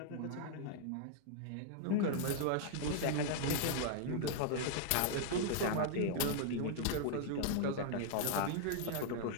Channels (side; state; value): both; different; correlation -0.01